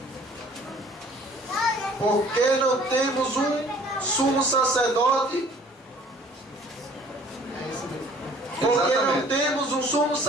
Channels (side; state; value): both; normal; correlation 0.54